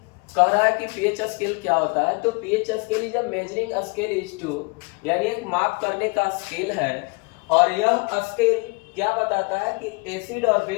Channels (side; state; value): right; quieter; 29.9 dB